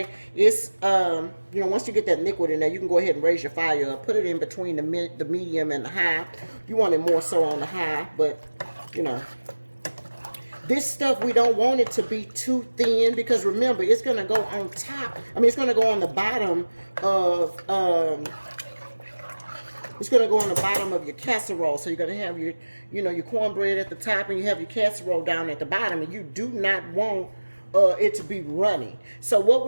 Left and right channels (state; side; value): inverted; both; correlation -1.00